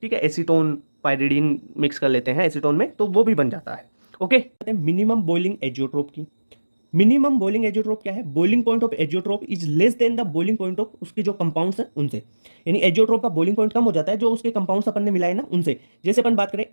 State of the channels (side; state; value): both; inverted; correlation -1.00